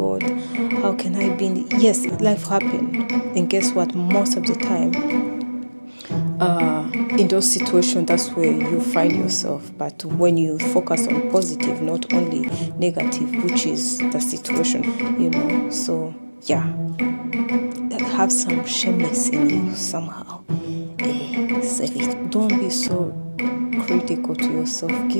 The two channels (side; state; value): both; inverted; correlation -1.00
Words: how can I be in yes, life happened, and guess what, most of the time in those situations, that's where you find yourself. But when you focus on positive, not only negative, which is the situation, so yeah, have some shameless in you somehow. Save it. Don't be so critical to yourself.